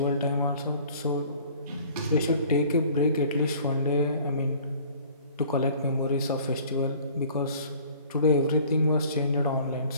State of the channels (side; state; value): both; inverted; correlation -0.51